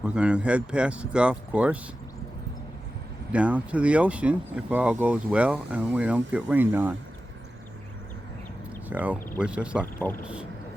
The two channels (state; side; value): normal; both; correlation 0.93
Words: going to head past the golf course down to the ocean if all goes well and we don't get rained on. So wish us luck, folks.